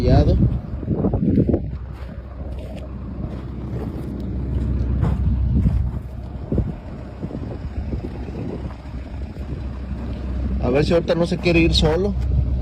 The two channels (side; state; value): both; identical; correlation 1.00